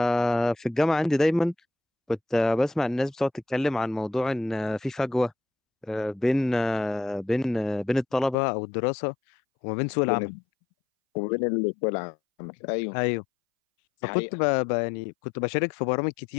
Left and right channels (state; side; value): drops out; right; at 8.3 s